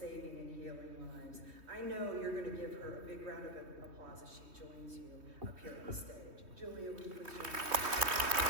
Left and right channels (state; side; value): late; left; 3.3 ms